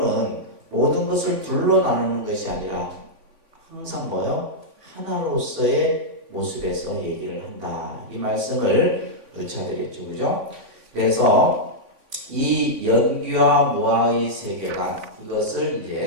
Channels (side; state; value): left; late; 3.6 ms